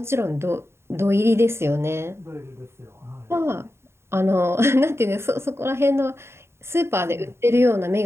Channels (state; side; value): late; left; 0.12 ms